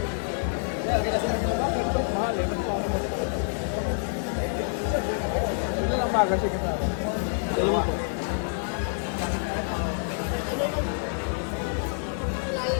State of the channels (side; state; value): right; silent; 60 dB below the other